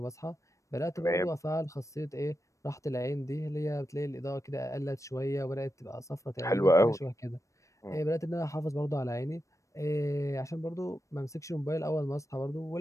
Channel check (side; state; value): right; late; 0.15 ms